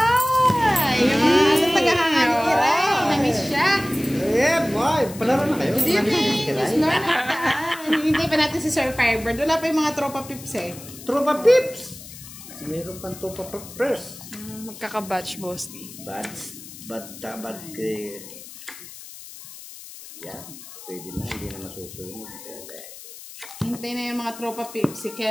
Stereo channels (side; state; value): left; noise; hiss, 15 dB below the sound